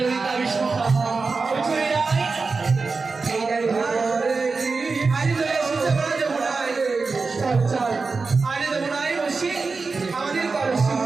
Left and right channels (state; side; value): quieter; left; 4.3 dB